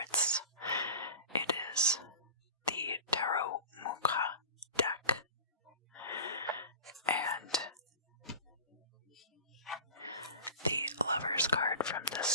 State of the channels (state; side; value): inverted; both; correlation -0.35